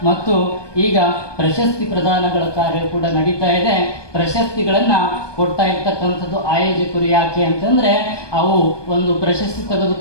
ಮತ್ತು ಈಗ ಪ್ರಶಸ್ತಿ ಪ್ರದಾನಗಳ ಕಾರ್ಯ ಕೂಡ ನಡೀತಾ ಇದೆ. ಪ್ರಶಸ್ತಿಗಳನ್ನು ಕೊಡ್ತಾ ಇರ್ತಕ್ಕಂಥದ್ದು ಆಯೋಜಕರು. ಯಾಕೆ ಅಂತಂದರೆ ಅವು ಒಂದು ಪ್ರಶಸ್ತಿ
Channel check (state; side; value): late; right; 1.2 ms